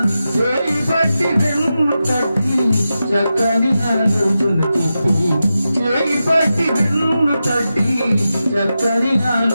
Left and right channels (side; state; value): both; inverted; correlation -0.91